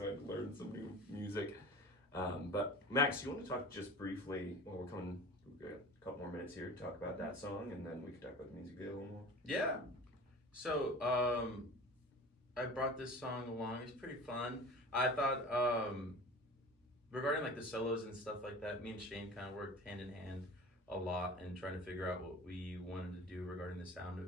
I learned some new music. But Max, you want to talk just briefly? Well, we've got a couple more minutes here to talk about that song, and then we can talk about the music video a little more. Yeah. So I brought this song along. It's pretty fun. I thought regarding like the solos and stuff like that, me and Shane kind of worked hand in hand a lot and trying to figure out what we wanted to do regarding the sound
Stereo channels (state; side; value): normal; both; correlation 0.39